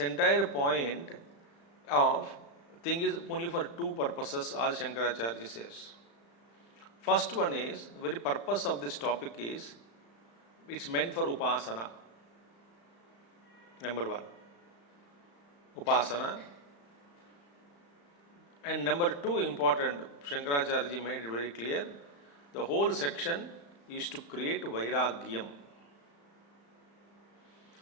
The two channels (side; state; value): right; late; 35 ms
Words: point of thing is only for two purposes, Adi Shankaracharya says. First one is, the very purpose of this topic is, it's meant for Upasana. Number one, Upasana. And number two important, Shankaracharya made it very clear, the whole section is to create Vairagyam.